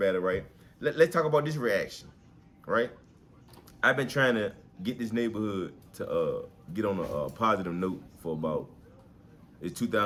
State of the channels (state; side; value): identical; both; correlation 1.00